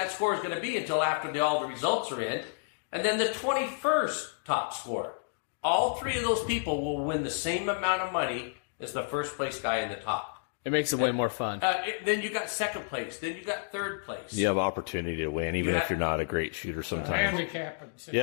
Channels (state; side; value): silent; right; digital silence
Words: score is going to be until after all the results are in. And then the 21st top score. All 3 of those people will win the same amount of money as the first place guy in the top. It makes it way more fun. Then you got second place. Then you got third place. You have opportunity to win, even if you're not a great shooter sometimes.